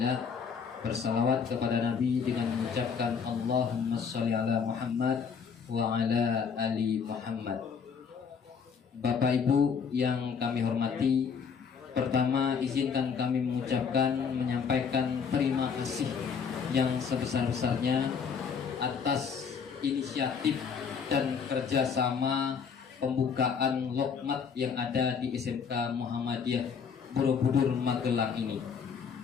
bersalawat kepada Nabi dengan mengucapkan Allahumma sholli ala Muhammad wa ala ali Muhammad. Bapak Ibu yang kami hormati, pertama izinkan kami menyampaikan terima kasih yang sebesar-besarnya atas inisiatif dan kerjasama pembukaan lokmat yang ada di SMK Muhammadiyah Borobudur Magelang ini.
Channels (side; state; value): right; quieter; 6.4 dB